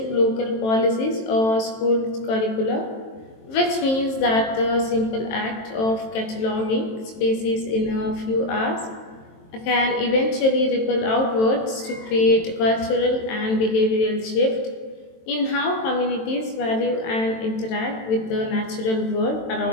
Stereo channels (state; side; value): late; right; 23 ms